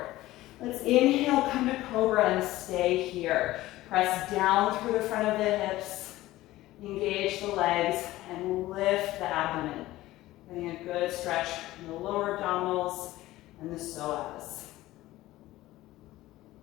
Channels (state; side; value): quieter; right; 16.7 dB